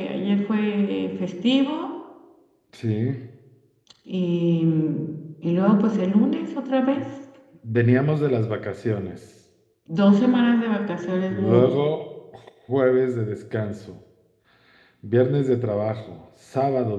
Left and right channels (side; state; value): both; identical; correlation 1.00